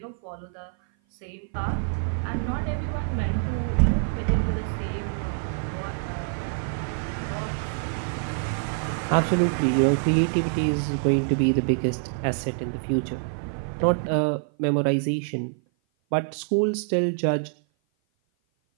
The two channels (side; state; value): left; silent; 56 dB below the other